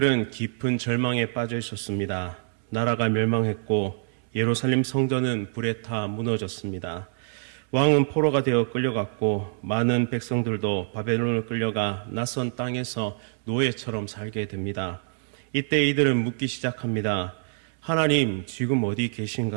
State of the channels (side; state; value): left; silent; digital silence